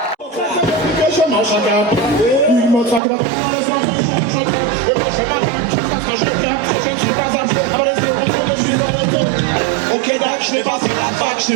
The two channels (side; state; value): left; drops out; at 3.0 s